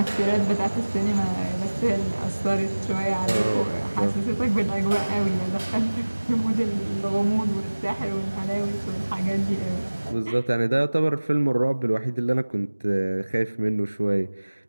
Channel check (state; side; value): inverted; both; correlation -1.00